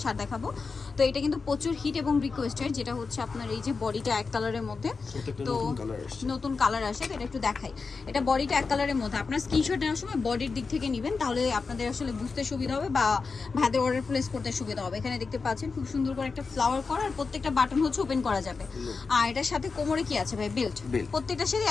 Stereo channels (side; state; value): right; quieter; 4.6 dB